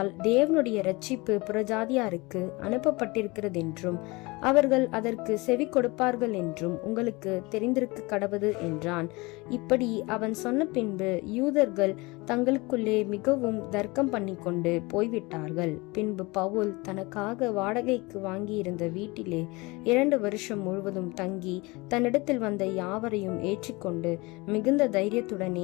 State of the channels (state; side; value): quieter; right; 24.5 dB